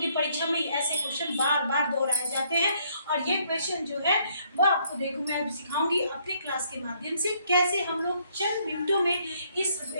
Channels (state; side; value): inverted; both; correlation -0.68